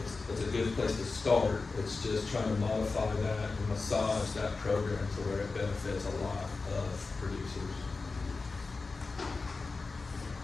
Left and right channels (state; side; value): quieter; right; 4.0 dB